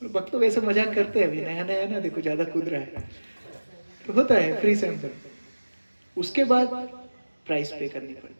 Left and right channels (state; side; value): inverted; both; correlation -1.00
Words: भक्त तो वैसे मजाक करते हैं, अभी नया नया ना, देखो ज्यादा कूद रहा है, तो होता है फ्री सैंपल। उसके बाद प्राइस पे करनी